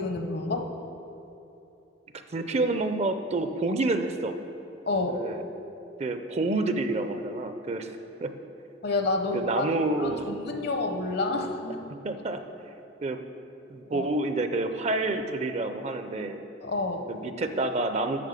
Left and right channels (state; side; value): normal; both; correlation 0.22